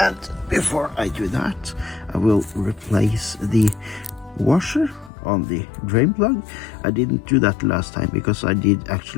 And before I do that, I will replace the washer on the drain plug. I didn't do that last time because I did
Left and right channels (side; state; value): right; drops out; at 5.1 s